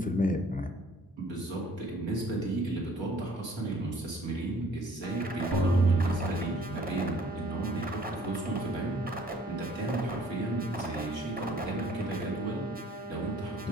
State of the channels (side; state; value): both; normal; correlation 0.56